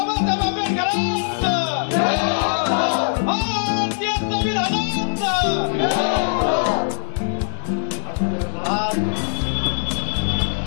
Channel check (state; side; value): silent; right; digital silence